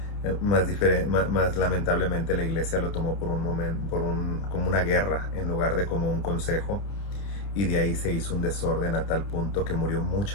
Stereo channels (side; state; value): right; late; 30 ms